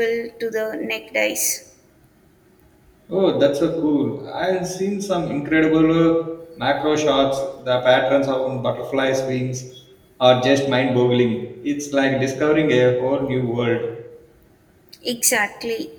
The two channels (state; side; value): identical; both; correlation 1.00